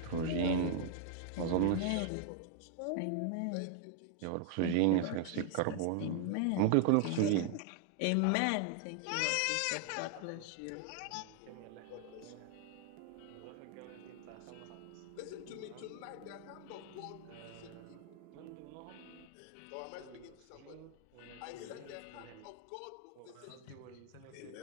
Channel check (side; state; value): both; different; correlation 0.00